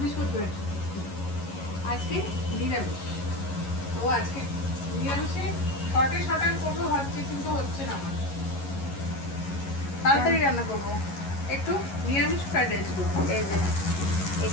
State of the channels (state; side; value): late; right; 11 ms